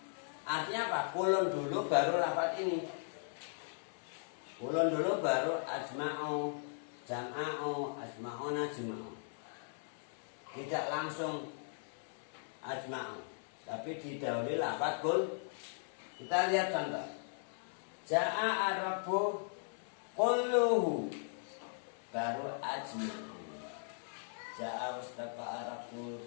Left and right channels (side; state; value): right; silent; digital silence